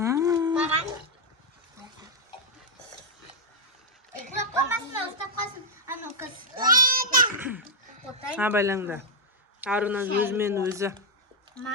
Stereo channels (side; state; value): both; normal; correlation -0.03